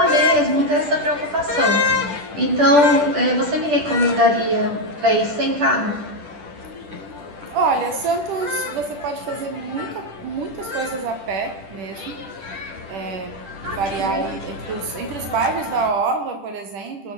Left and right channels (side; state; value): left; late; 10 ms